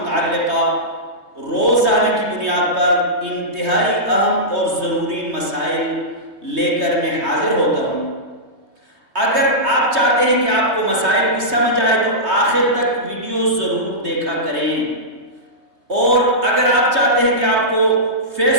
روزانہ کی بنیاد پر انتہائی اہم اور ضروری مسائل لے کر میں حاضر ہوتا ہوں۔ اگر آپ چاہتے ہیں کہ آپ کو مسائل کی سمجھ آئے تو آخر تک ویڈیو ضرور دیکھا کریں، اور اگر آپ چاہتے ہیں کہ آپ کو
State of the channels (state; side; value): late; left; 3.2 ms